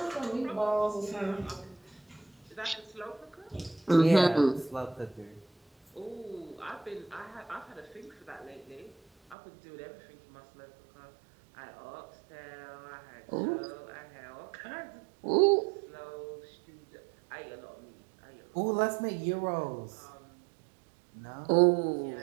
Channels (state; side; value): drops out; left; at 9.3 s